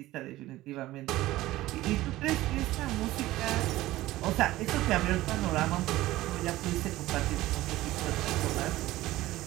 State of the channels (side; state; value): left; quieter; 16.7 dB